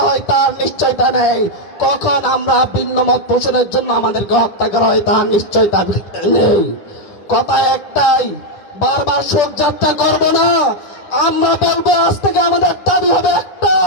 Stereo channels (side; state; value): right; late; 10 ms